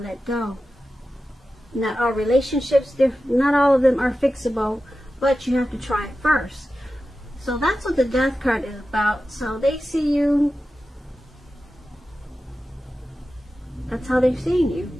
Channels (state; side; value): normal; both; correlation 0.93